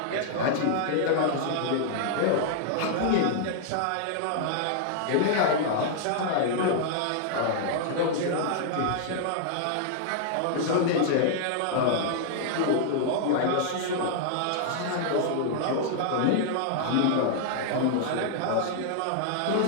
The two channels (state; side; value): different; both; correlation -0.01